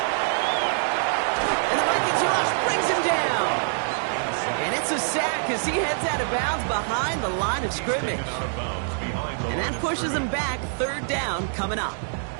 And the Vikings rush brings him down. And it's a sack as he heads out of bounds behind the line of scrimmage. And that pushes him back, third down coming up.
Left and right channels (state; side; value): silent; left; digital silence